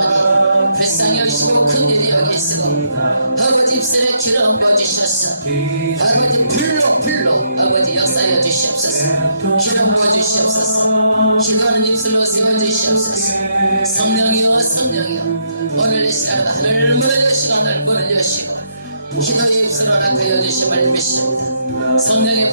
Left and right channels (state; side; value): inverted; both; correlation -0.74